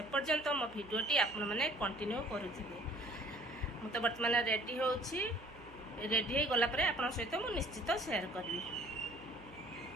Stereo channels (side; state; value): right; noise; hum, 20 dB below the sound